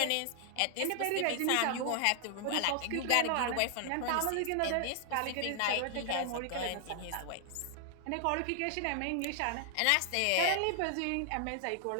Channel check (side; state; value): both; different; correlation 0.00